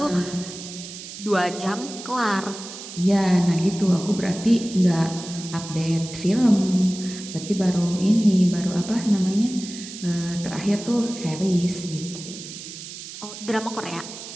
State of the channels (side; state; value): right; noise; hiss, 12 dB below the sound